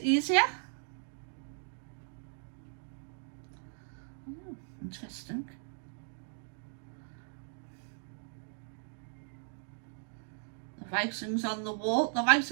easier. Oh, interesting. The writings on the wall, the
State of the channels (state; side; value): silent; left; digital silence